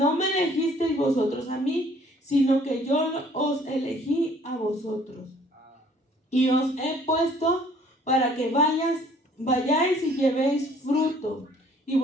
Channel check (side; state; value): both; normal; correlation 0.57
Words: me elegisteis vosotros a mí, sino que yo os elegí a vosotros, y os he puesto para que vayáis y llevéis fruto, y